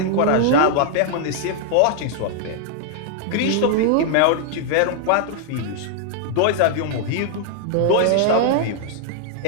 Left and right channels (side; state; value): both; different; correlation -0.01